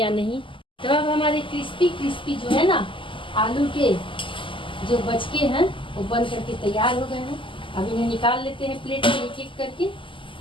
नहीं। तो अब हमारे क्रिस्पी क्रिस्पी जो है ना आलू के जो बचके हैं वो बन करके तैयार हो गए हैं। अब इन्हें निकाल लेते हैं प्लेट में एक एक करके।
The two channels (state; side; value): late; right; 0.25 ms